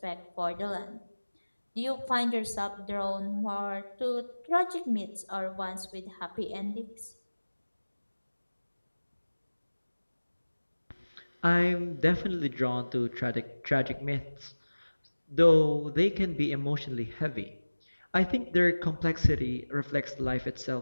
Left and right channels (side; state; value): both; inverted; correlation -1.00